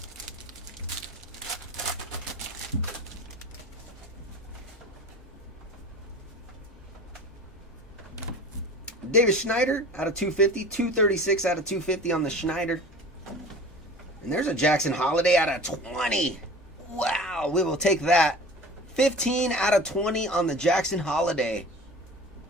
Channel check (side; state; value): both; normal; correlation 0.39